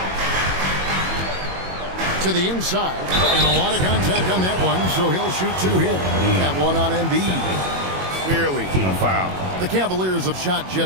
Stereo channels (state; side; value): late; left; 21 ms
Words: To the inside, and a lot of contact on that one, so he'll shoot 2 here. That one on Embiid. Clearly a foul. The Cavaliers have shot